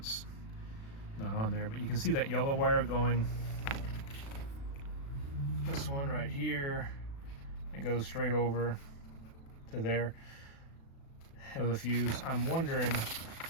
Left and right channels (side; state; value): right; late; 36 ms